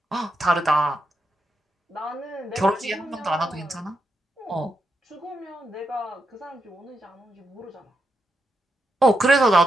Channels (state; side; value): normal; both; correlation 0.84